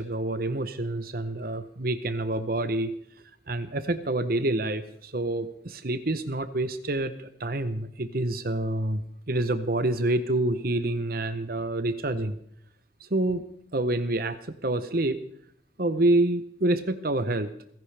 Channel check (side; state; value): both; normal; correlation 0.47